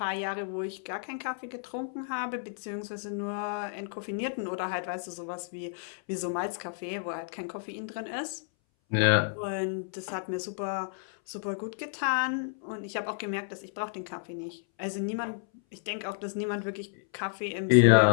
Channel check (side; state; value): right; silent; 57 dB below the other